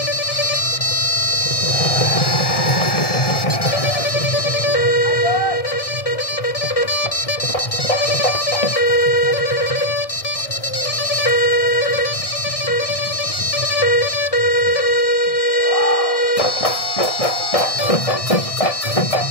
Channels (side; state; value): right; late; 1.6 ms